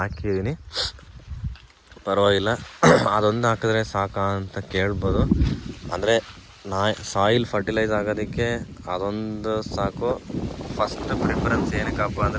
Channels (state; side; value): identical; both; correlation 1.00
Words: ಪರವಾಗಿಲ್ಲ, ಅದೊಂದು ಹಾಕಿದ್ರೆ ಸಾಕಾ ಅಂತ ಕೇಳ್ಬೋದು. ಅಂದರೆ ಸಾಯಿಲ್ ಫರ್ಟಿಲೈಸ್ ಆಗೋದಕ್ಕೆ ಅದೊಂದು ಸಾಕು. ಫಸ್ಟ್ ಪ್ರಿಫರೆನ್ಸ್ ಏನಕ್ಕಪ್ಪ